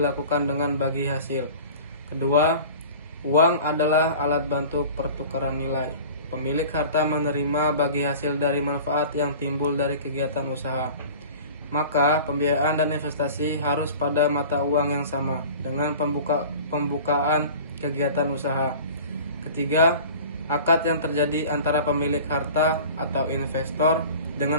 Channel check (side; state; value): both; inverted; correlation -0.41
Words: dengan bagi hasil. Kedua, uang adalah alat bantu pertukaran nilai. Pemilik harta menerima bagi hasil dari manfaat yang timbul dari kegiatan usaha. Maka pembiayaan dan investasi harus pada mata uang yang sama dengan pembukaan kegiatan usaha. Ketiga, akad yang terjadi antara pemilik harta atau investor